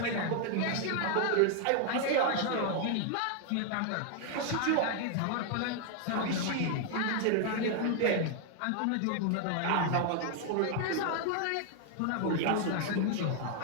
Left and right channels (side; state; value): both; different; correlation 0.00